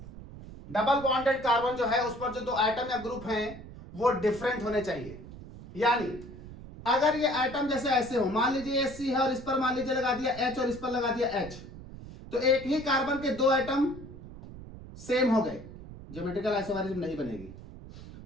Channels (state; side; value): noise; right; rumble, 15 dB below the sound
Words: Double bonded carbon जो है उस पर जो 2 एटम या ग्रुप हैं वो डिफरेंट होने चाहिए। यानी अगर ये एटम जैसे ऐसे हो, मान लीजिए ये C है और इस पर मान लीजिए लगा दिया H और इस पर लगा दिया H, तो एक ही कार्बन के 2 एटम सेम हो गए, ज्योमेट्रिकल आइसोमेरिज्म नहीं बनेगी।